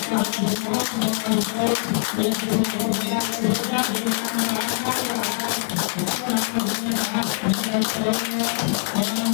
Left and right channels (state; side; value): silent; right; digital silence